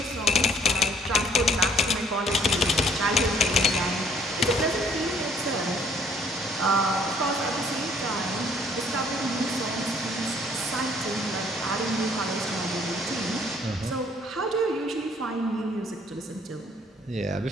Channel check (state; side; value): normal; both; correlation 0.61